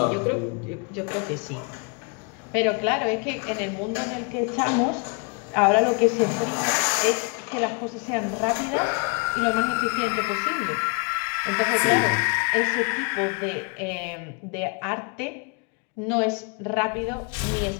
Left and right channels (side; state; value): right; quieter; 35.4 dB